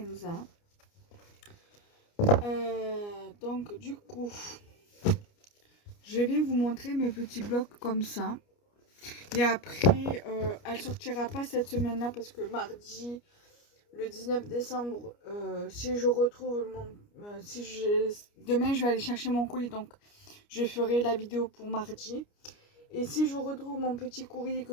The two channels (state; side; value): late; right; 29 ms